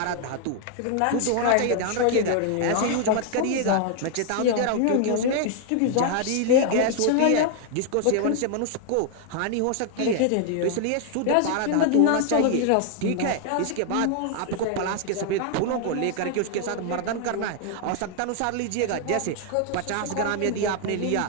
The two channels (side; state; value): both; different; correlation 0.00